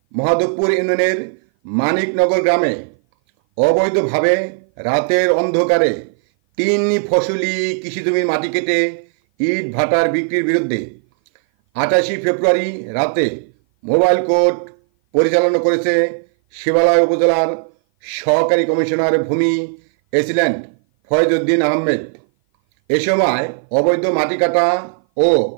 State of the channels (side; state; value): left; silent; 57 dB below the other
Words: মহাদেবপুর ইউনিয়নের মানিকনগর গ্রামে অবৈধভাবে রাতের অন্ধকারে 3 ফসলি কৃষিজমির মাটি কেটে ইট ভাটার বিক্রির বিরুদ্ধে 28 ফেব্রুয়ারি রাতে মোবাইল কোর্ট পরিচালনা করেছে শিবালয় উপজেলার সহকারী কমিশনার ভূমি এসিল্যান্ড ফয়েজউদ্দিন আহমেদ। এ সময় অবৈধ মাটি কাটা ও